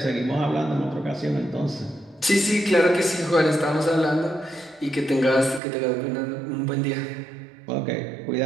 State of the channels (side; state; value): left; drops out; at 5.6 s